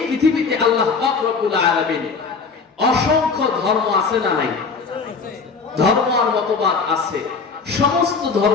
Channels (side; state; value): right; quieter; 4.9 dB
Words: পৃথিবীতে আল্লাহ পাক রব্বুল আলামিন অসংখ্য ধর্ম আছে না নাই? ধর্ম আর মতবাদ আছে। সমস্ত